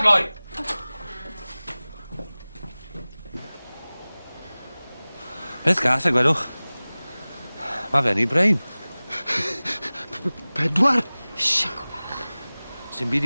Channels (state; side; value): inverted; both; correlation -0.99